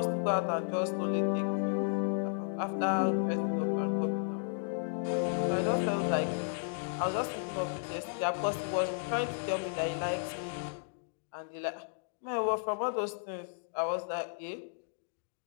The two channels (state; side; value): silent; right; digital silence